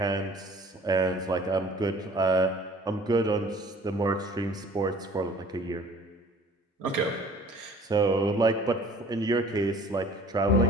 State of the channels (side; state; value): both; normal; correlation 0.50